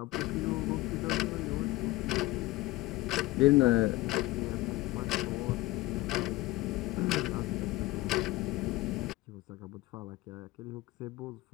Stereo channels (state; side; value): quieter; right; 19.0 dB